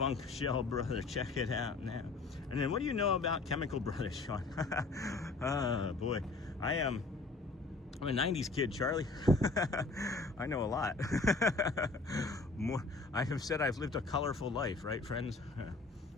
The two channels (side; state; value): right; quieter; 3.6 dB